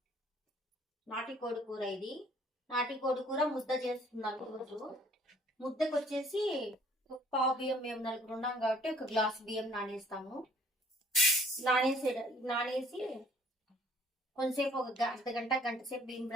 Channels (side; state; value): both; normal; correlation 0.58